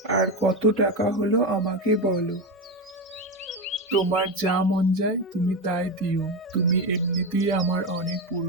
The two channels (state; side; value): normal; both; correlation 0.15